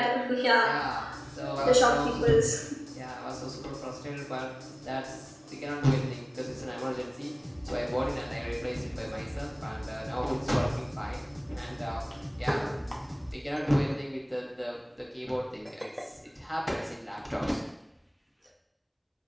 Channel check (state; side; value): identical; both; correlation 1.00